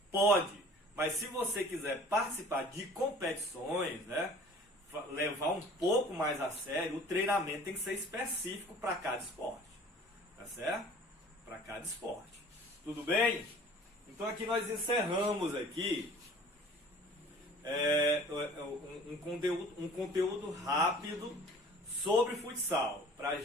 Pode, mas se você quiser participar de competições, né, levar um pouco mais a sério, o treinamento tem que ser específico para cada esporte, tá certo? Para cada esporte. Tudo bem? Então aqui nós encerramos aqui um conteúdo rápido sobre futsal, para a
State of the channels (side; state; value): both; normal; correlation 0.48